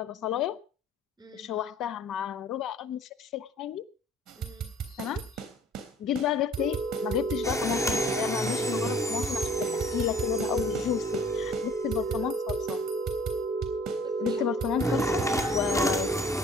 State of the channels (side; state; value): both; normal; correlation 0.52